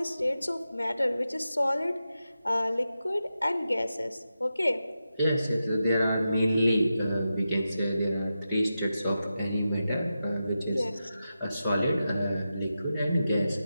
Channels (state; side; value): inverted; both; correlation -0.90